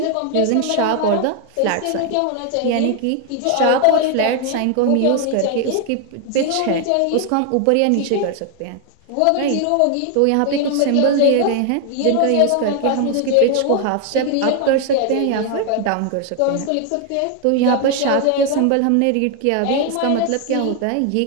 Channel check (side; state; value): both; different; correlation 0.00